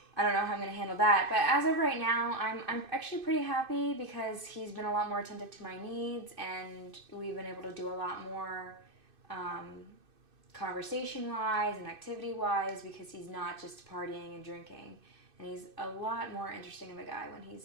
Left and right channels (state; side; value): late; left; 2.6 ms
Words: I don't know how I'm going to handle that. But as of right now, I'm actually pretty happy because he's been a lot more attentive to my needs, and we've been able to do a lot more conversation-wise and activity-wise because he's not just partying and drinking. And he's a lot more interesting of a guy when